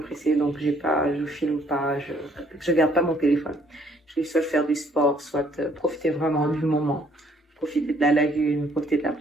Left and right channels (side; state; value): both; normal; correlation 0.63